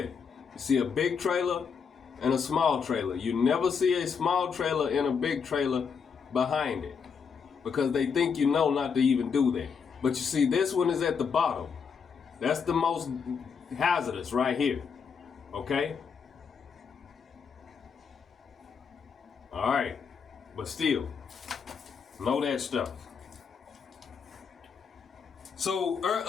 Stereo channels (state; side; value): quieter; right; 6.2 dB